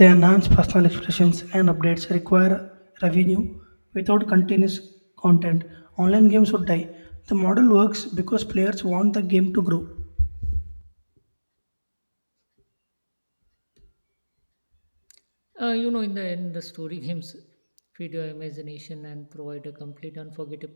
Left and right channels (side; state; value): both; inverted; correlation -1.00